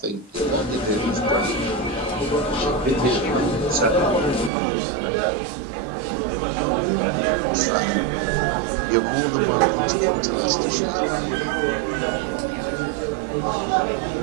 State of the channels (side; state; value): left; drops out; at 4.5 s